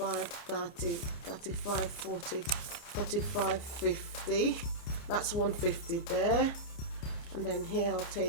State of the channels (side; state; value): right; late; 29 ms